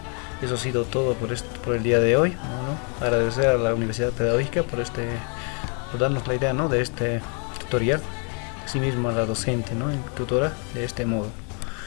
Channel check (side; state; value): right; quieter; 38.5 dB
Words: Eso ha sido todo por el día de hoy. Bueno, agradecer a la Universidad Pedagógica por darnos la idea, ¿no?, de este tutorial. Asimismo a la docente, ¿no?, tutora de este modo.